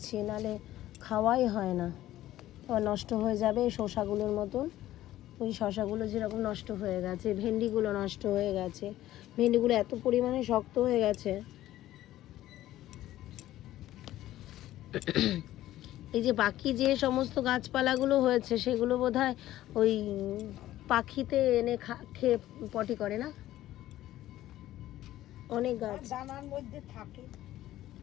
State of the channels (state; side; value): quieter; right; 14.3 dB